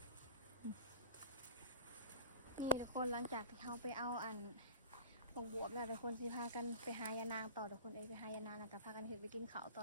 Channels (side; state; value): both; inverted; correlation -0.40